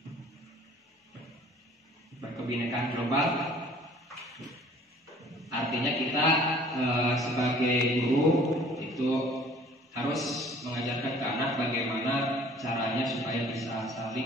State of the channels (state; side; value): normal; both; correlation 0.52